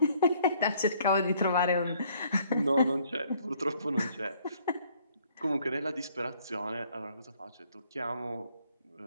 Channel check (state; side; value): inverted; both; correlation -0.63